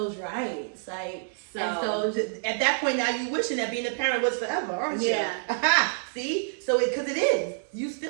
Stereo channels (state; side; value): silent; left; 60 dB below the other